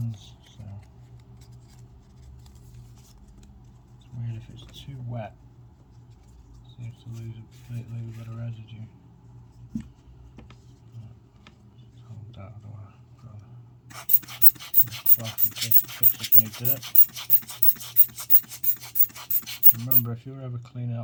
so it's weird if it's too wet. It seems to leave a bit of residue. Just hold that, I don't want to put on a cloth in case it picks up any dirt. Remember, if you're ever cleaning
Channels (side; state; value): both; identical; correlation 1.00